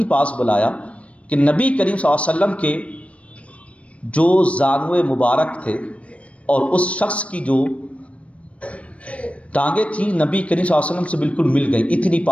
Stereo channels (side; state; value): right; late; 0.063 ms